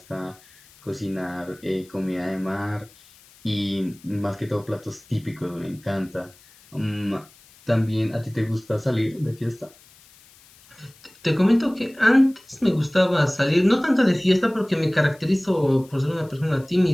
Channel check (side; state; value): left; noise; hiss, 26 dB below the sound